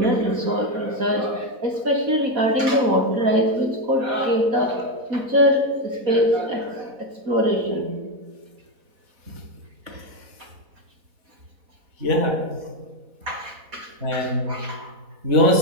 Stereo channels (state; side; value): late; left; 4.1 ms